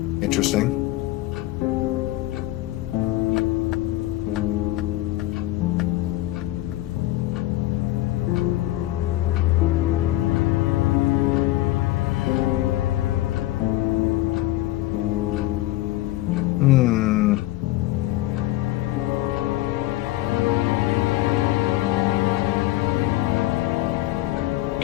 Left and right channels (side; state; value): right; quieter; 16.4 dB